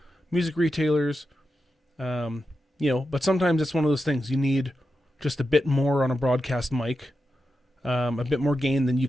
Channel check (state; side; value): normal; both; correlation 0.89